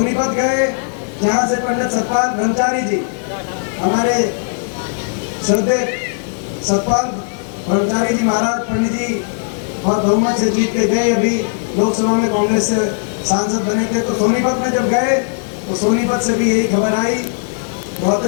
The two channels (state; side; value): silent; right; digital silence